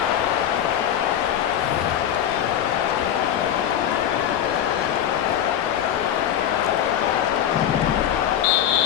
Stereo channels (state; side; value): quieter; right; 10.3 dB